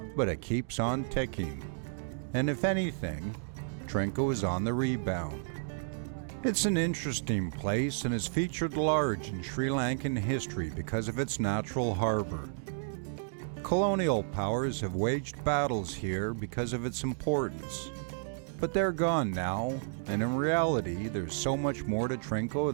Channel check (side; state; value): left; silent; digital silence